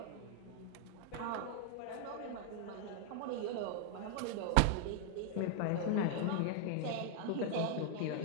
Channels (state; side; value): different; both; correlation 0.00